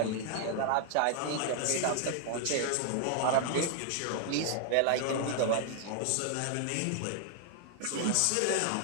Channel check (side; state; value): both; different; correlation 0.00